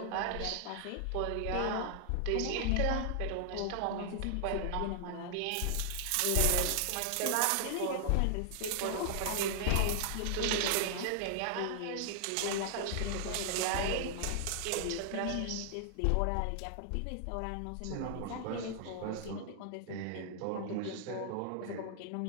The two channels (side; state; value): both; different; correlation -0.01